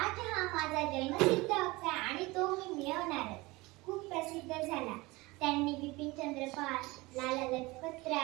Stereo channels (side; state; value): left; quieter; 22.3 dB